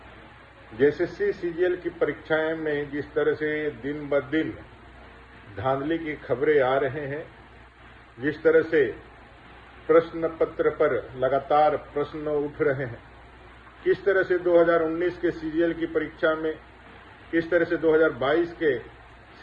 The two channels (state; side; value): identical; both; correlation 1.00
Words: जेएसएससी सीजीएल की परीक्षाएं में जिस तरह से दिन ब दिन धांधली की खबरें आ रहे हैं, जिस तरह से प्रश्न पत्र पर लगातार प्रश्न उठ रहे हैं, किस तरह से 2019 के सीजीएल की परीक्षा में, किस तरह से 2022 के